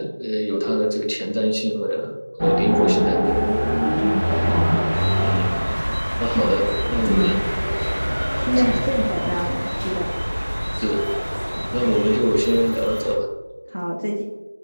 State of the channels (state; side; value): inverted; both; correlation -1.00